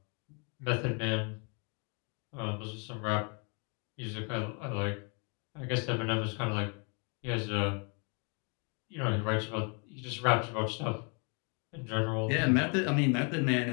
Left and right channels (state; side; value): quieter; right; 36.6 dB